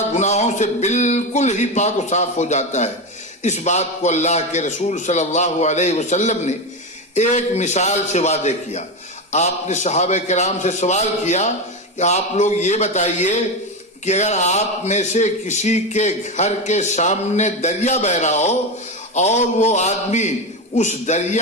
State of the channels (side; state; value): both; normal; correlation 0.16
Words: گناہوں سے بالکل ہی پاک و صاف ہو جاتا ہے۔ اس بات کو اللہ کے رسول صلی اللہ علیہ وسلم نے ایک مثال سے واضح کیا۔ آپ نے صحابہ کرام سے سوال کیا کہ آپ لوگ یہ بتائیے کہ اگر آپ میں سے کسی کے گھر کے سامنے دریا بہ رہا ہو اور وہ آدمی اس